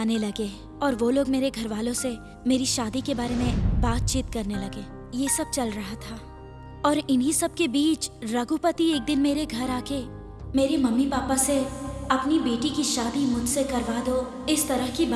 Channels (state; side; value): identical; both; correlation 1.00